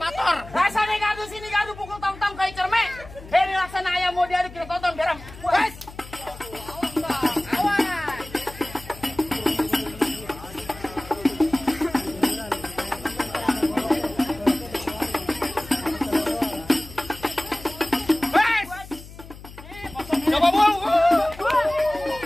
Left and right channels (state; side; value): noise; left; hum, 17 dB below the sound